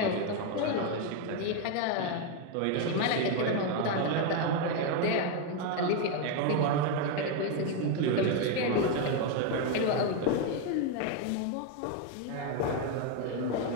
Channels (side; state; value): both; different; correlation 0.01